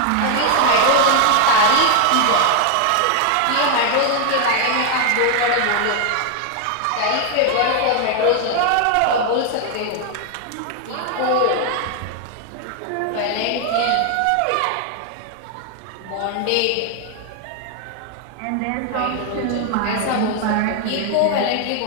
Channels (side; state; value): both; different; correlation 0.01